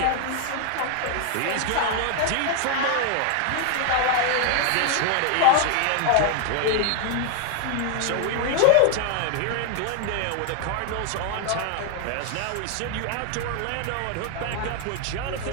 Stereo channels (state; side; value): different; both; correlation 0.01